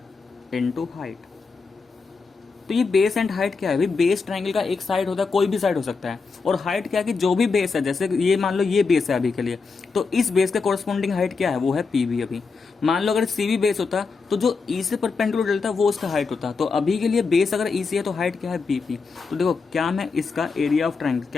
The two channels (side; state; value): right; quieter; 4.7 dB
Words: into height. तो ये बेस एंड हाइट क्या है भाई, बेस ट्रायंगल का एक साइड होता है, कोई भी साइड हो सकता है, और हाइट क्या है कि जो भी बेस है, जैसे ये मान लो ये बेस है अभी के लिए, तो इस बेस का कोरस्पॉन्डिंग हाइट क्या है, वो है पीबी। अभी मान लो अगर सीबी बेस होता तो जो ई से परपेंडिकुलर डलता वो उसका हाइट होता, तो अभी के लिए बेस अगर ई सी है तो हाइट क्या है, बीपी। तो देखो क्या मैं इसका एरिया ऑफ ट्राइंगल,